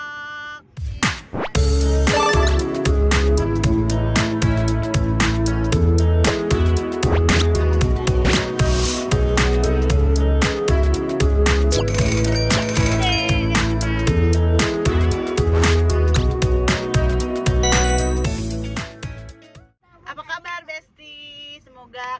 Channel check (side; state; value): both; identical; correlation 1.00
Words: Apa kabar Besti? Semoga